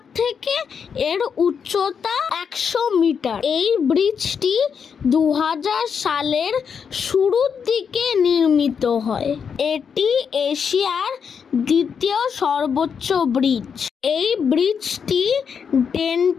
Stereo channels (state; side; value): quieter; right; 6.7 dB